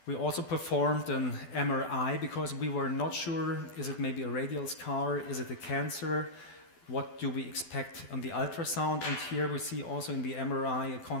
We also performed an MRI because we were not sure, is it maybe a radial scar, is it a cancer, what do we expect on the ultrasound, and here we see also in the MRI a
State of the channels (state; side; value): late; right; 12 ms